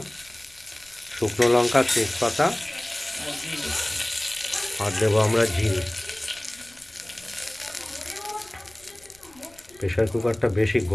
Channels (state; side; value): noise; left; rumble, 28 dB below the sound